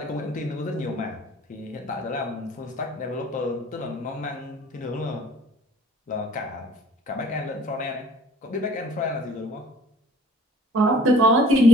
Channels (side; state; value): both; normal; correlation 0.52